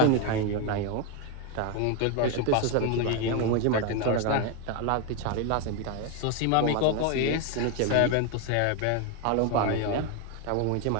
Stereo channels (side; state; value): both; different; correlation 0.01